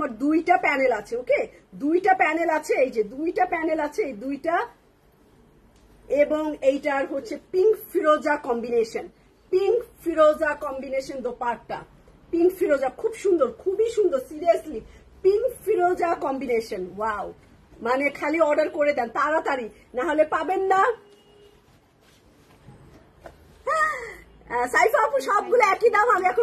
দুইটা প্যানেল আছে, ওকে, দুইটা প্যানেল আছে, এই যে দুইটা প্যানেল আছে, এই দুইটা। এবং এইটার হচ্ছে পিঙ্ক ফিরোজা কম্বিনেশন, পিঙ্ক ফিরোজা কম্বিনেশন দোপাট্টা, পিঙ্ক ফিরোজা খুব সুন্দর, খুবই সুন্দর, সিরিয়াসলি পিঙ্ক ফিরোজা কম্বিনেশন। ওয়াও, মানে খালি অর্ডার করে দেন তাড়াতাড়ি, না হলে পাবেন না। সাইফা আপু সবগুলো একই দাম, আমি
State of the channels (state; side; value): identical; both; correlation 1.00